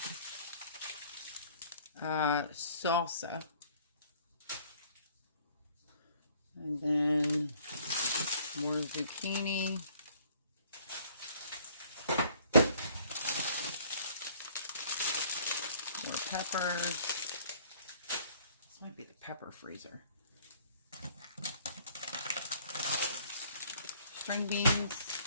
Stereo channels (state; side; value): inverted; both; correlation -0.58